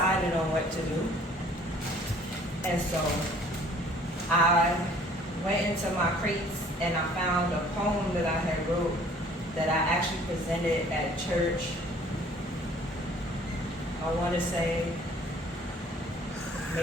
on what to do. And so I went into my crates and I found a poem that I had wrote that I actually presented at church. I want to say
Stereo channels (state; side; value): normal; both; correlation 0.55